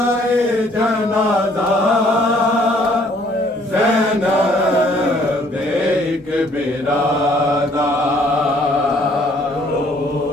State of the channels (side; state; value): both; normal; correlation 0.61